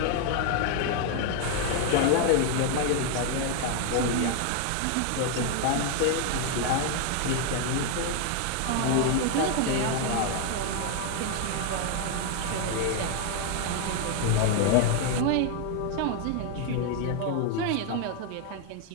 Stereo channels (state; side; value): different; both; correlation 0.00